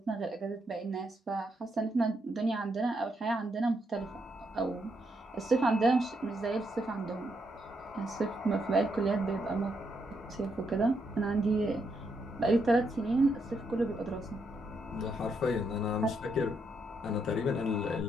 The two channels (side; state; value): both; normal; correlation 0.78